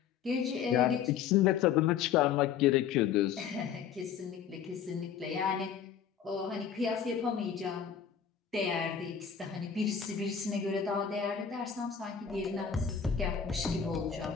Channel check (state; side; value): quieter; right; 7.8 dB